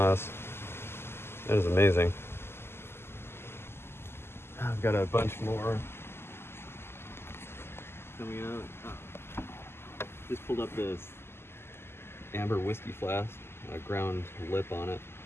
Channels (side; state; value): right; late; 0.12 ms